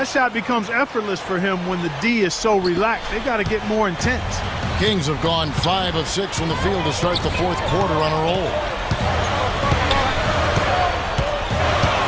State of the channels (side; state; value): both; identical; correlation 1.00